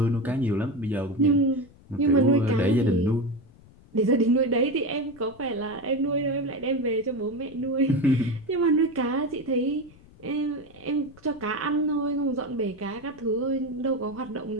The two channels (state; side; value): noise; left; rumble, 24 dB below the sound